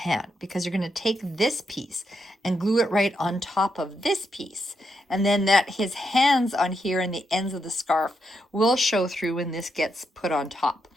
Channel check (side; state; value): both; normal; correlation 0.81